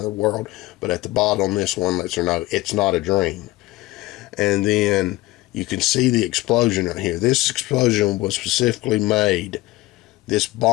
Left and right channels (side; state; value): right; quieter; 19.0 dB